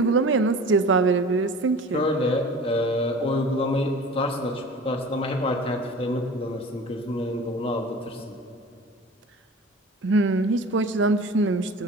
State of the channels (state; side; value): normal; both; correlation 0.39